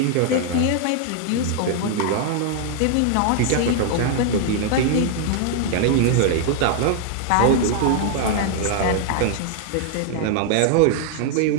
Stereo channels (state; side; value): different; both; correlation 0.00